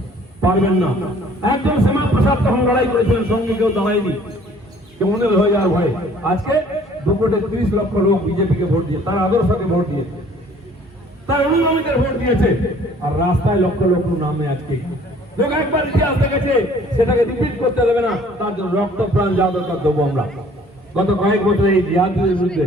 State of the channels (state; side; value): normal; both; correlation 0.55